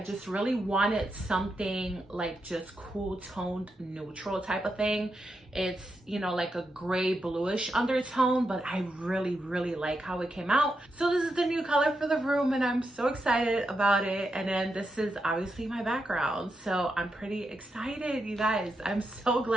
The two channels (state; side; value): normal; both; correlation 0.85